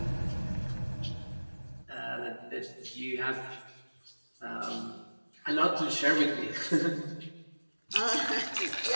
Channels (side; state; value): both; inverted; correlation -1.00